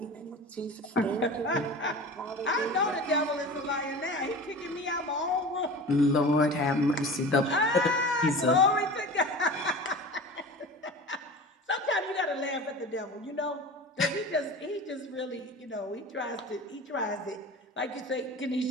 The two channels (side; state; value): both; normal; correlation 0.35